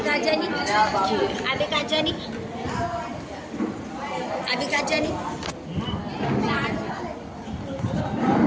कहाँ जानी? अभी कहाँ जानी? अभी कहाँ जानी?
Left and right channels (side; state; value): both; identical; correlation 1.00